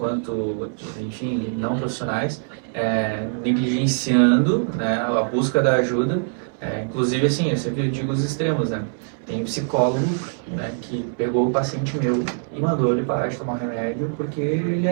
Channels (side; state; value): left; silent; 63 dB below the other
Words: enfim, não profissionais, negligenciando, né, a busca da ajuda. Inclusive, assim, eu sempre digo os extremos, né? Tem psicólogo, né, que pegou o paciente meu e mandou ele parar de tomar remédio porque ele